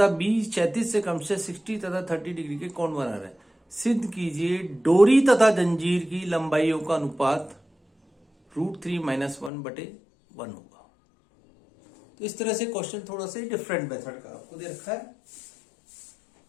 बी क्षैतिज से क्रमशः 60 तथा 30 डिग्री के कोण बना रहे हैं। सिद्ध कीजिए डोरी तथा जंजीर की लंबाइयों का अनुपात √3 - 1/1 होगा। तो इस तरह से क्वेश्चन थोड़ा सा डिफरेंट मेथड का आपको दे रखा है।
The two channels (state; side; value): drops out; right; at 9.5 s